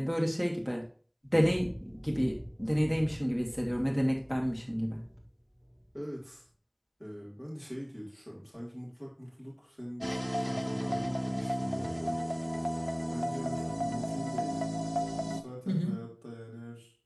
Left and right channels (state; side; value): identical; both; correlation 1.00